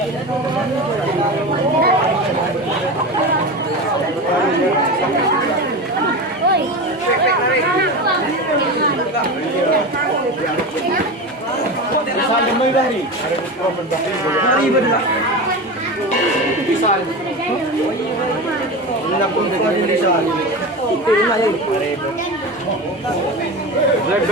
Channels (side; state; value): both; normal; correlation 0.25